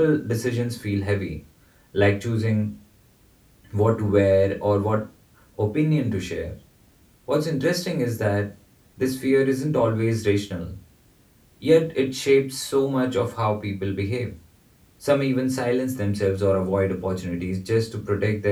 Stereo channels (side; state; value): both; identical; correlation 1.00